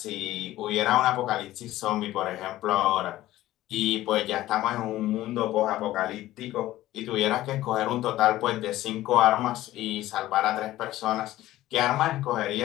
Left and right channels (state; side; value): quieter; right; 15.4 dB